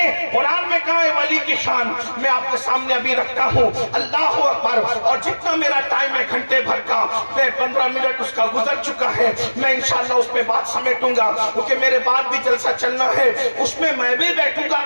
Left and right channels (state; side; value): inverted; both; correlation -1.00